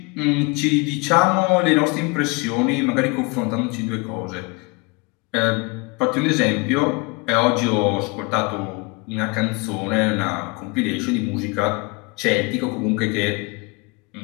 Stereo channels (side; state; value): right; quieter; 28.3 dB